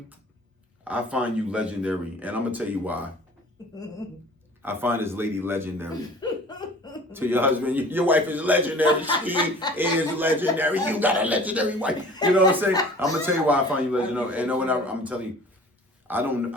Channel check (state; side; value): normal; both; correlation 0.46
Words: I find you legendary. And I'm going to tell you why. I find this lady legendary. To your husband, your wife is legendary. She is legendary. You got a legendary wife. You know what I'm saying? I'm gonna tell you why I find you legendary. And when I'm telling you, I don't